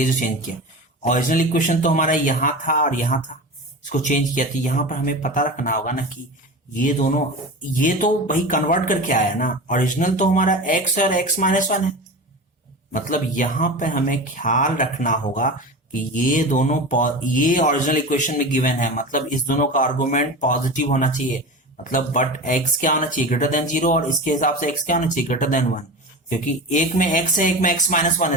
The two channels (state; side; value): normal; both; correlation 0.29